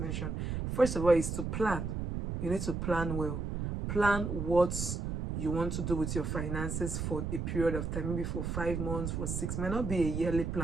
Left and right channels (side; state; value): right; noise; rumble, 3 dB below the sound